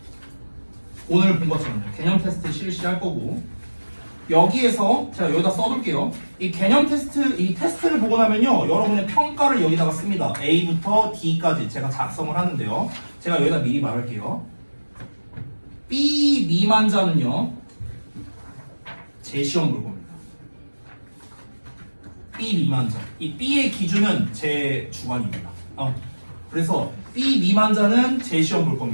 오늘 본 것처럼요. 개념 테스트 실시할 거고, 여기에서 제가 여기다 써둘게요. 이 개념 테스트, 이 테스트를 보고 나면요, 여러분의 평가를 여기다가 씁니다. A부터 D까지 제가 작성을 하는데요. 제가 여기다 미리 말할게요. B 미만자는요, 제 시험 볼 겁니다. B 미만자. 이 B의 기준은 제 주관입니다. 그래서 B 미만자는 제 시험 볼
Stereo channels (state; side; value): inverted; both; correlation -1.00